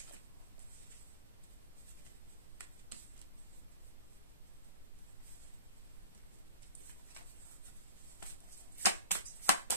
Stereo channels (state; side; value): inverted; both; correlation -0.41